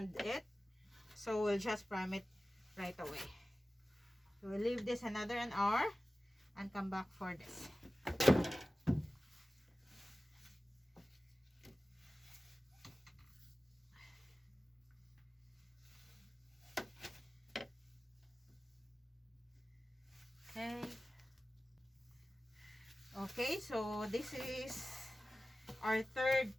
it, so we'll just prime it right away. So we'll leave this another an hour and come back for this. Okay, so this is our third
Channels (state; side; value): normal; both; correlation 0.96